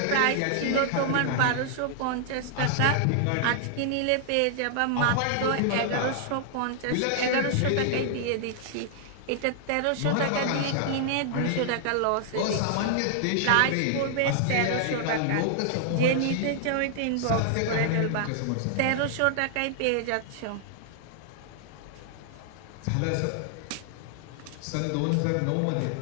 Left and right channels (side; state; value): both; different; correlation -0.01